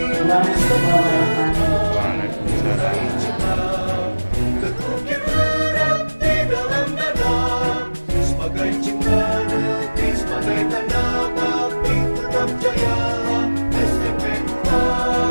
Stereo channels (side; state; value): both; inverted; correlation -1.00